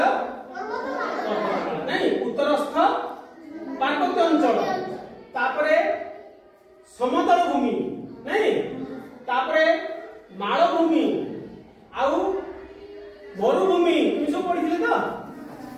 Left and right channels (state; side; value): identical; both; correlation 1.00